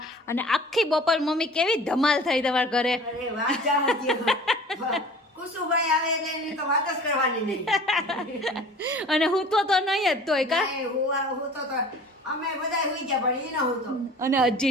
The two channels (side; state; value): both; normal; correlation 0.44